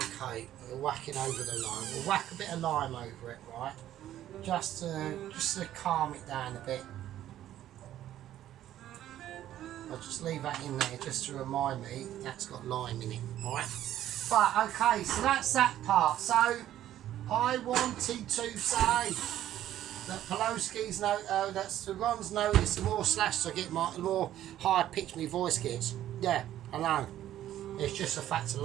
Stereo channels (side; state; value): left; quieter; 12.4 dB